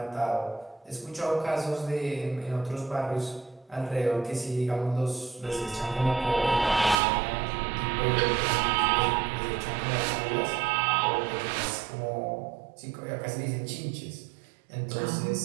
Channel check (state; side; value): drops out; left; at 7.0 s